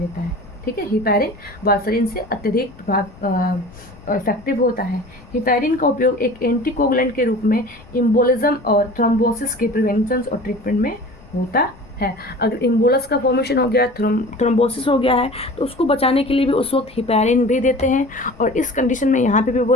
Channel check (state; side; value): noise; left; rumble, 23 dB below the sound